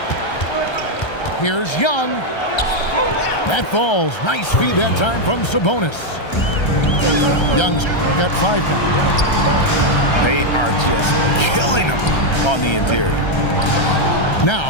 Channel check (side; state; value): right; late; 1.3 ms